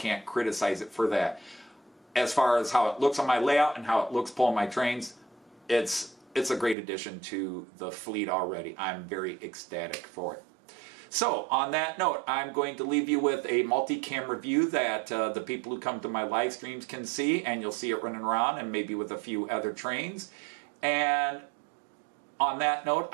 criticize it for that. As far as how it looks on my layout and how it looks pulling my trains, it's a great addition to the fleet already. I'm very ecstatic for it. So, on that note, I'm going to leave you with a multi-cam review that the people who come to my live streams can see, and you'll see it running around, and maybe with a few other trains. And on that note,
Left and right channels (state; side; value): drops out; left; at 6.8 s